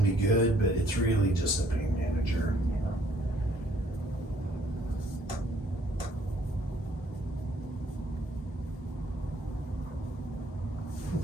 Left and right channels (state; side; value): normal; both; correlation 0.63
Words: be good, but it's really just a pain manager. Yeah.